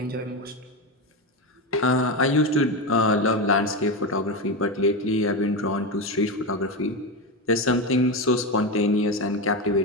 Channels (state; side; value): normal; both; correlation 0.14